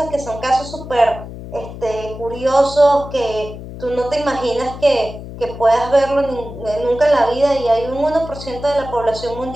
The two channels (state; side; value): noise; left; hum, 12 dB below the sound